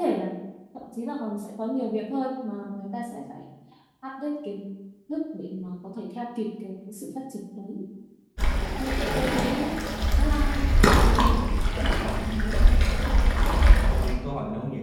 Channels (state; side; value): identical; both; correlation 1.00